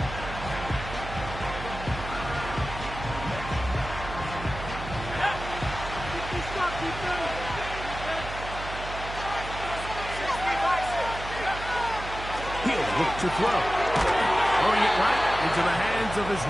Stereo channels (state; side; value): noise; right; hum, 9 dB below the sound